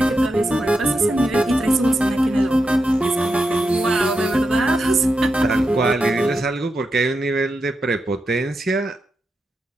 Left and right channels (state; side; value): normal; both; correlation 0.87